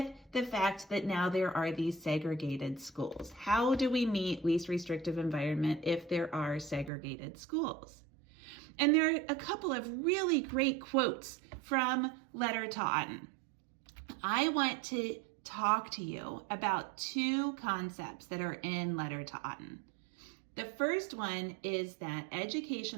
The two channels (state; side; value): drops out; left; at 6.9 s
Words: the fact that now there are these segregated schools? How do we meet least restrictive environment if there are segregated schools? And there are a couple of really great quotes from Letter to Autin. I want to talk to you about two concepts that are in Letter to Autin. The first one is that